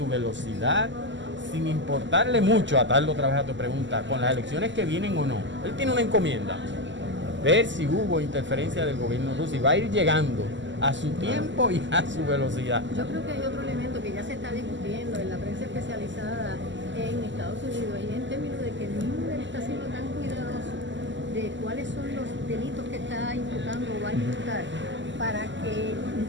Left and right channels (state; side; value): late; left; 0.54 ms